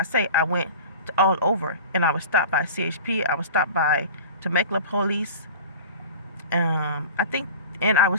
say, I went all over, and I was stopped by CHP. I was stopped by Temecula police. I think, and I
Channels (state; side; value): inverted; both; correlation -0.37